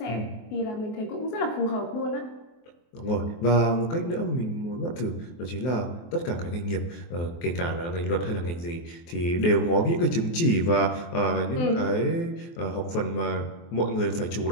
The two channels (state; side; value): late; right; 23 ms